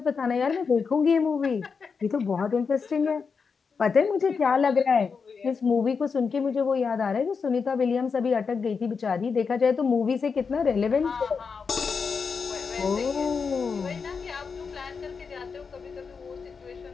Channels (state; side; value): quieter; right; 5.5 dB